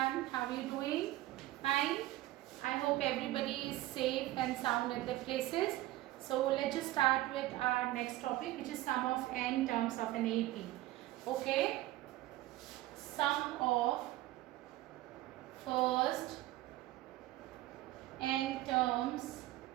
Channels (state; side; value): quieter; left; 16.4 dB